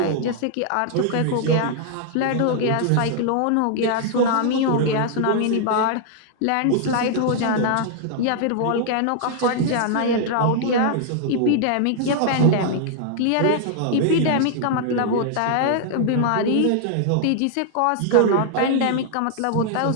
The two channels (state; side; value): different; both; correlation 0.00